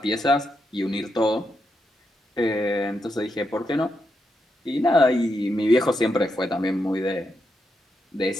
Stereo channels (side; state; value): both; normal; correlation 0.83